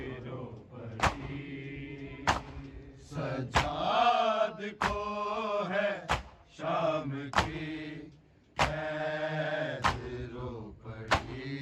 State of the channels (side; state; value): both; identical; correlation 1.00